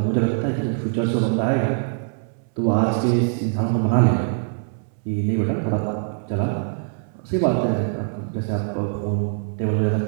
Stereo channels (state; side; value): silent; left; 62 dB below the other